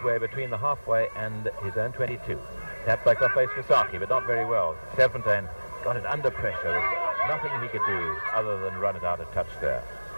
between the halfway and his own 22. Tap back off face for Saki, but not very well. Serfontaine got it under pressure. There's nothing he could do other than run it out of touch there.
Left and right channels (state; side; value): inverted; both; correlation -1.00